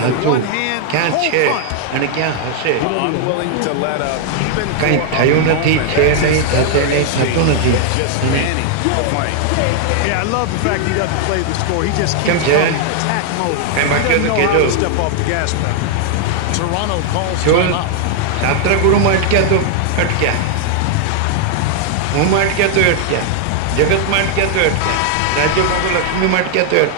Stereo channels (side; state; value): both; different; correlation 0.00